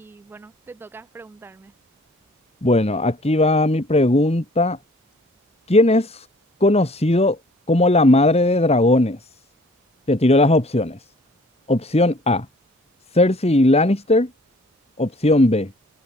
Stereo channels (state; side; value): normal; both; correlation 0.54